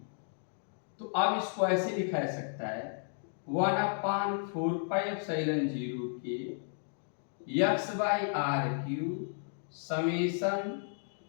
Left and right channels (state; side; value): silent; right; digital silence